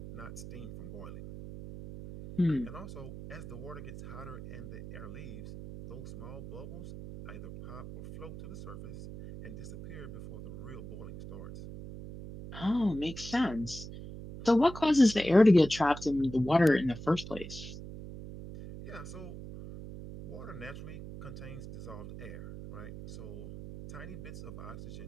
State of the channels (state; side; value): noise; right; hum, 11 dB below the sound